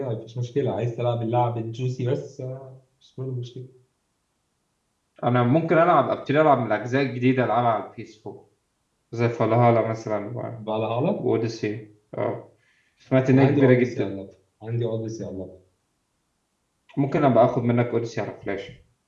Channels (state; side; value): identical; both; correlation 1.00